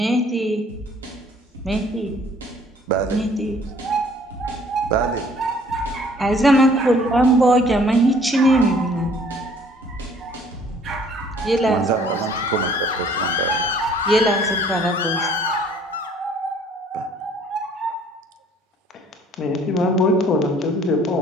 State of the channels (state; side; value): normal; both; correlation 0.57